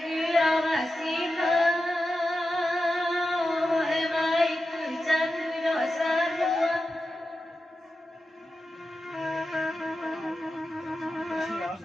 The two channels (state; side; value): normal; both; correlation 0.91